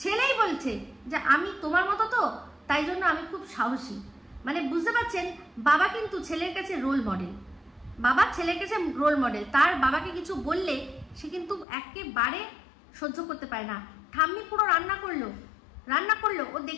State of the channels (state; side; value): drops out; right; at 11.7 s